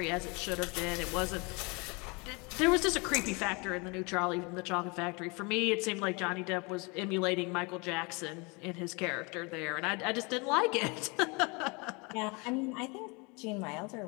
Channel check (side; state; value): right; quieter; 29.3 dB